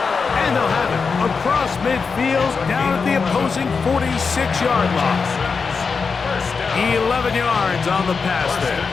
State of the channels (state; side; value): quieter; right; 5.1 dB